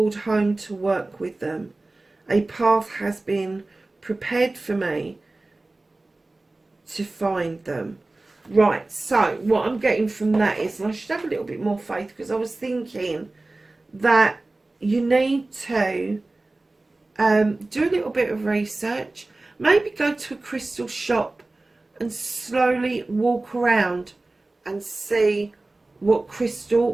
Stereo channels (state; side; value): quieter; left; 3.0 dB